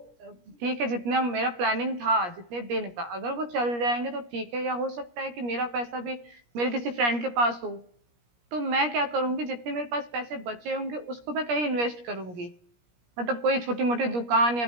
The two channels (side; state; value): left; late; 17 ms